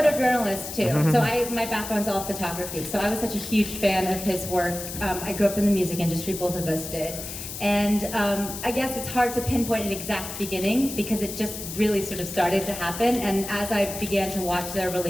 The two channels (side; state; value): left; noise; hiss, 8 dB below the sound